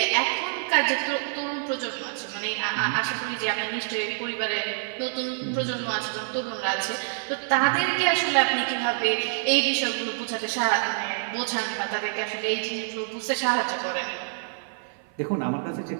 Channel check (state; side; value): silent; left; 55 dB below the other